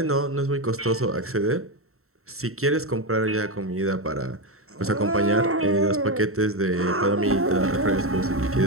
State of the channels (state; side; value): late; left; 0.63 ms